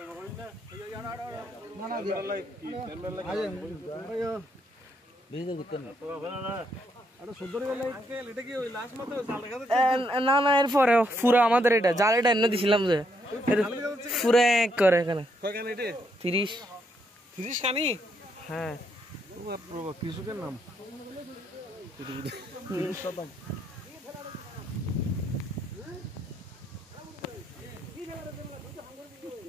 না না এরপরে পুরো আমাদের এটা জাল এটা এনে দিছিলাম যে পুরো এক করে এখানে 30 কানি হ্যাঁ কৃষকের নাম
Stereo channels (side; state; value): both; normal; correlation 0.75